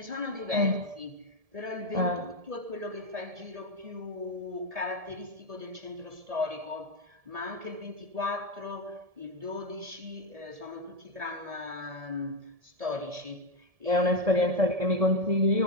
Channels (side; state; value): left; late; 1.7 ms